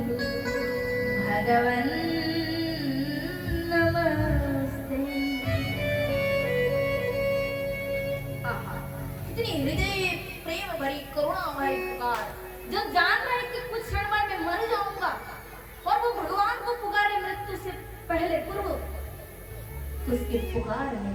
भगवन् नमस्ते। इतनी हृदय प्रेम भरी करुणा भरी पुकार, जब जान रहा है कि कुछ क्षण में मैं मर जाऊंगा और वो भगवान को पुकारे मृत्यु से पहले पूर्व, तो उसके पुकार में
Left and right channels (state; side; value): identical; both; correlation 1.00